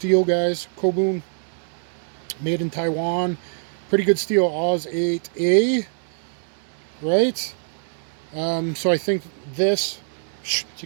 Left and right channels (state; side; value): silent; left; digital silence